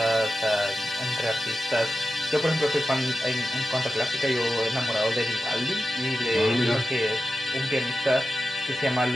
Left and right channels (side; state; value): both; normal; correlation 0.92